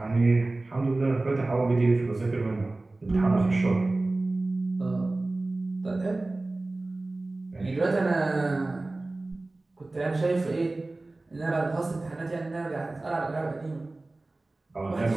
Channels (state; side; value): quieter; left; 3.0 dB